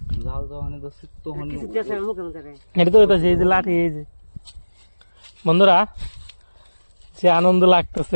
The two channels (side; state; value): both; inverted; correlation -1.00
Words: জাল যখন তখন এটা তো হইতাছে এই যে লাঠি। এই যে বন্ধুরা যে আনন্দ